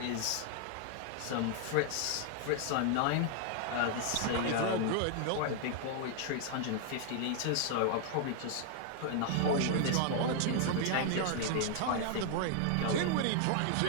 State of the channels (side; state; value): both; different; correlation 0.00